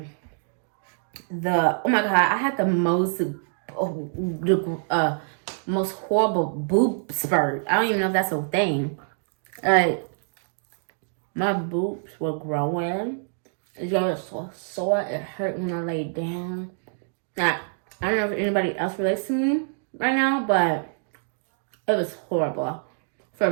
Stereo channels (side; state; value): left; silent; digital silence